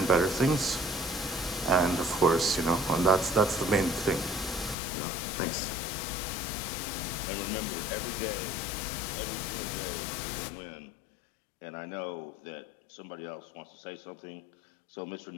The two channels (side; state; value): right; drops out; at 4.8 s